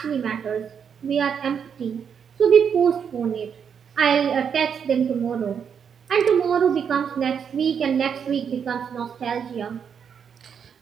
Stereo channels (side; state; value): left; quieter; 7.3 dB